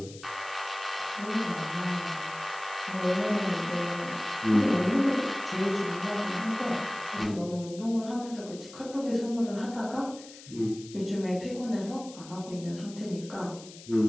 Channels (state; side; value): noise; left; hiss, 17 dB below the sound